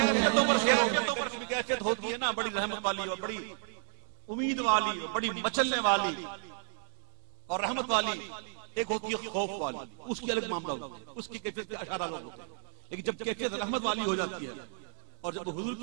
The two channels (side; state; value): left; silent; digital silence